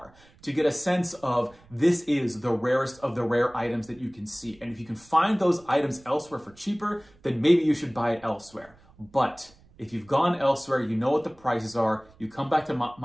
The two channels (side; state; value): right; noise; rumble, 27 dB below the sound